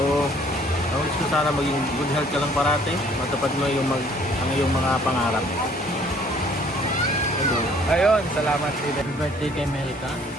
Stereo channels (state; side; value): normal; both; correlation 0.58